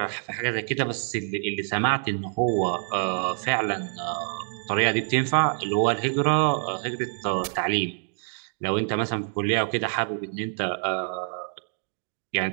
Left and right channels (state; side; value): silent; left; 61 dB below the other